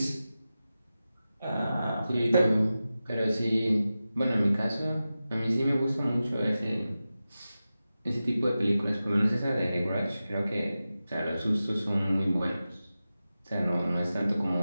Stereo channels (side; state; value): both; inverted; correlation -0.94